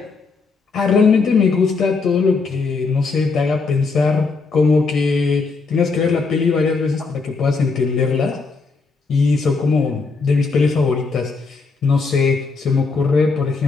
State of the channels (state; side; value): quieter; right; 4.3 dB